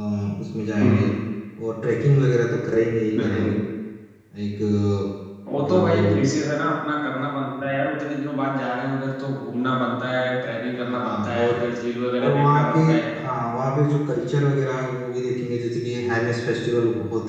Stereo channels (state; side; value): identical; both; correlation 1.00